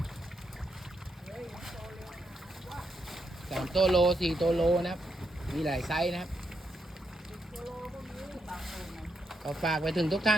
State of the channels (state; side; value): normal; both; correlation 0.81